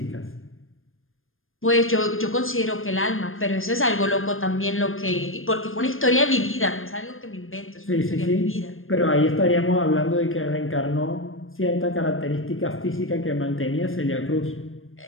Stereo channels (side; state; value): right; late; 0.60 ms